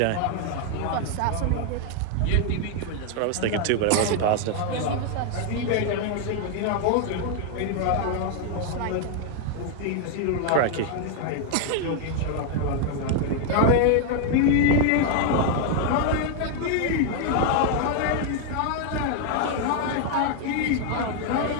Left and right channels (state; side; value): different; both; correlation 0.00